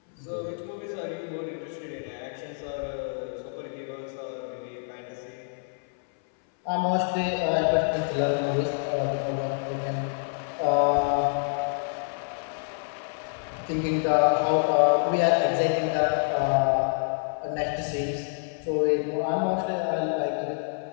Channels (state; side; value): silent; right; 59 dB below the other